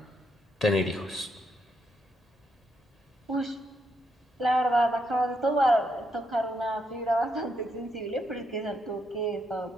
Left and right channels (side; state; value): both; normal; correlation 0.78